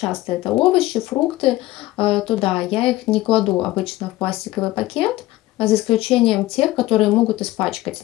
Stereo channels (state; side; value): quieter; right; 17.1 dB